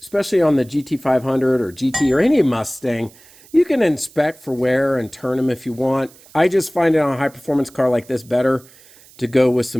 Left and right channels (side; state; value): right; noise; hiss, 25 dB below the sound